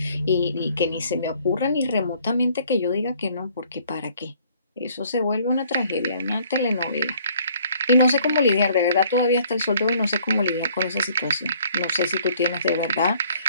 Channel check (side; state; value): both; inverted; correlation -0.60